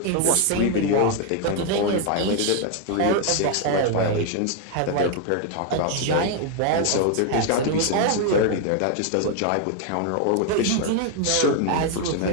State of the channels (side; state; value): both; different; correlation 0.00